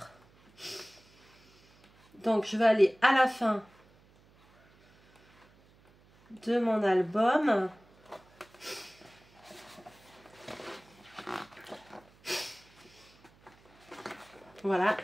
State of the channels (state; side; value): noise; right; hum, 29 dB below the sound